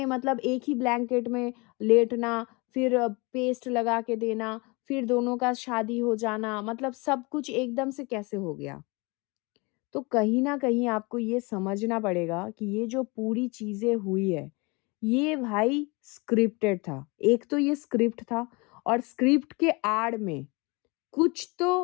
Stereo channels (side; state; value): right; quieter; 27.2 dB